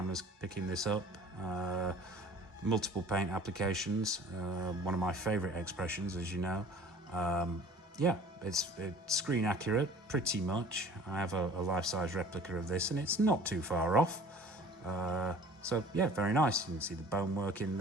picking this up. Multiple paint applications. One of my favorite expressions, as you know. Yeah, it's screen accurate, pretty much. I have a life-size replica of this, and it's not too far off. So yeah, very nice. You can see the bonework in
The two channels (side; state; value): both; normal; correlation 0.47